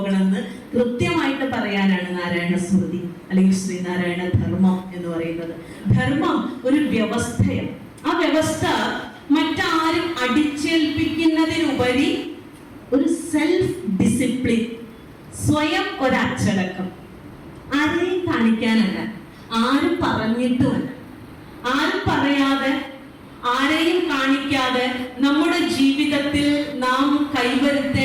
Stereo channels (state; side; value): identical; both; correlation 1.00